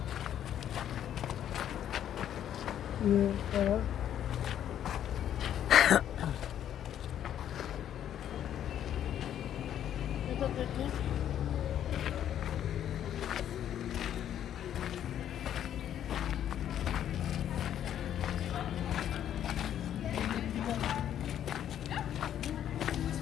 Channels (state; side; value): quieter; right; 10.4 dB